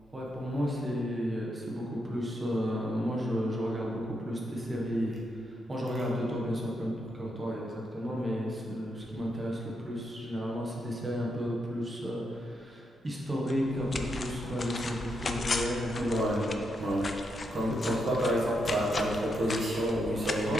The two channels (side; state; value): both; normal; correlation 0.81